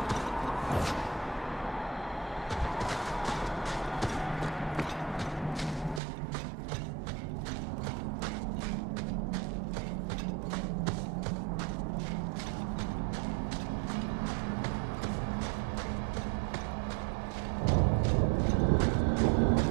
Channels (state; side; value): drops out; left; at 6.0 s